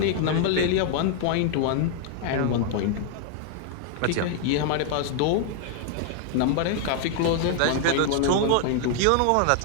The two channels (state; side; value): different; both; correlation 0.00